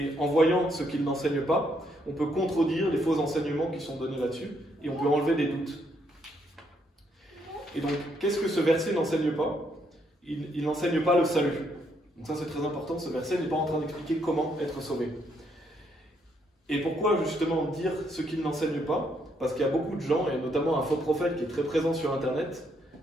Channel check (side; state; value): both; normal; correlation 0.73